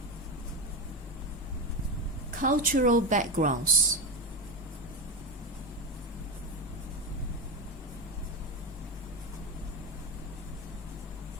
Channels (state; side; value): normal; both; correlation 0.17